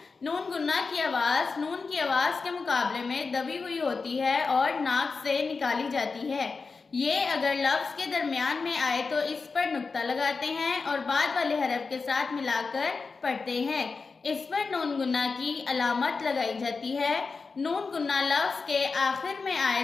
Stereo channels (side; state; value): right; quieter; 4.5 dB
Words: नून गुन्ना की आवाज़ नून की आवाज़ के मुकाबले में दबी हुई होती है और नाक से निकाली जाती है। ये अगर लफ्ज़ के दरमियान में आए तो इस पर नुक्ता लगाते हैं और बाद वाले हरफ के साथ मिलाकर पढ़ते हैं। इस पर नून गुन्ना की अलामत लगाई जाती है। नून गुन्ना लफ्ज़ के आखिर में आए